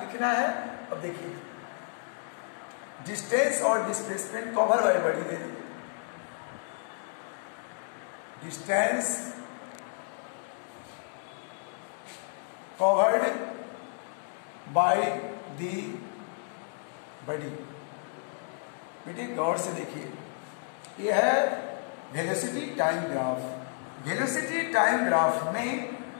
लिखना है, अब देखिए डिस्टेंस और displacement cover by body they the, distance covered by the body. बेटे गौर से देखिए, यह है velocity time graph. Velocity time graph में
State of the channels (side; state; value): right; silent; 57 dB below the other